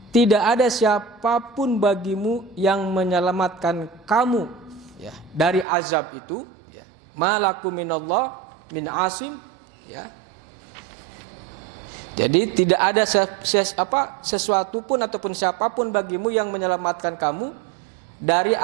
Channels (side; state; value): left; drops out; at 5.7 s